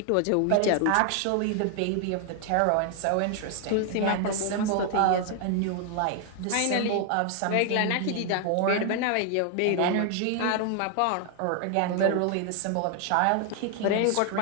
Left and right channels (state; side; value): different; both; correlation 0.00